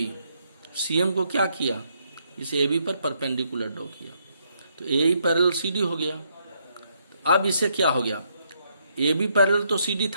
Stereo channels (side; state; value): both; inverted; correlation -0.74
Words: सीएम को क्या किया, इस एबी पर परपेंडिकुलर ड्रॉ किया. तो ए पैरेलल सीडी हो गया. अब इसे क्या हो गया, ए बी पैरेलल तो सी डी